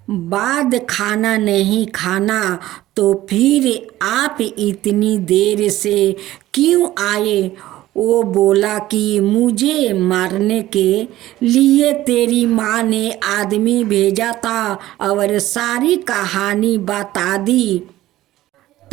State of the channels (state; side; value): quieter; left; 15.3 dB